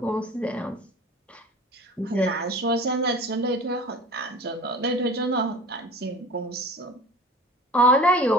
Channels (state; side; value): normal; both; correlation 0.41